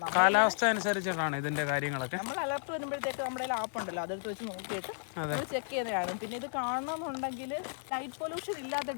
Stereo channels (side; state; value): right; silent; digital silence